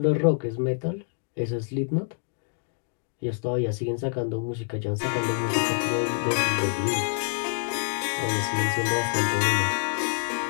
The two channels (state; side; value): silent; right; digital silence